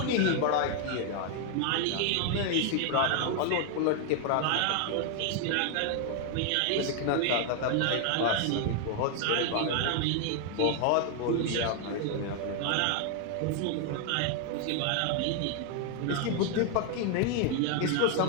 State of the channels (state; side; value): different; both; correlation 0.00